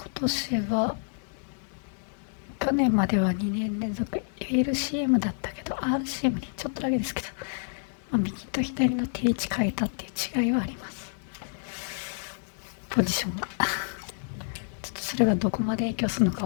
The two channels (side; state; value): right; silent; digital silence